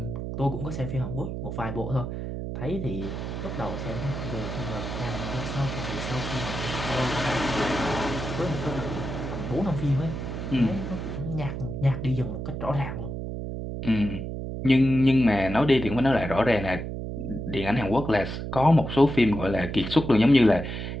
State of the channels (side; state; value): right; noise; hum, 5 dB below the sound